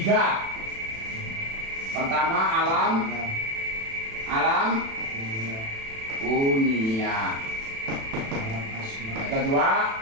Pertama alam kunia. Yang kedua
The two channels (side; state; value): left; late; 36 ms